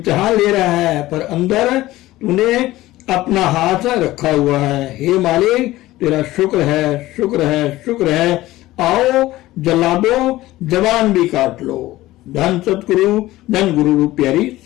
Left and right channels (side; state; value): right; quieter; 16.9 dB